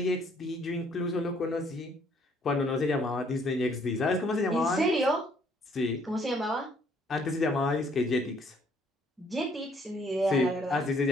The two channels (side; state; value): both; normal; correlation 0.64